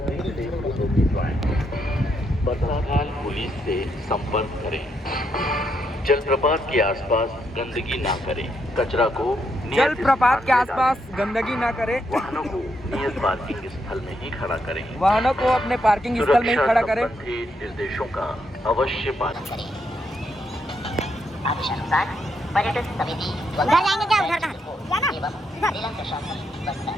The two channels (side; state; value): both; normal; correlation 0.78